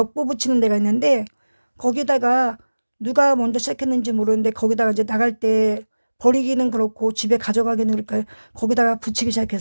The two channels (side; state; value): both; inverted; correlation -1.00